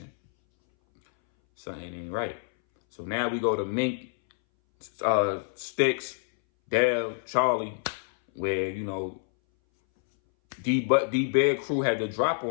Something ain't right. So now we go to Mink, Sticks, Dale, Charlie, where, you know, D-Bear crew had to drop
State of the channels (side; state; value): right; silent; 60 dB below the other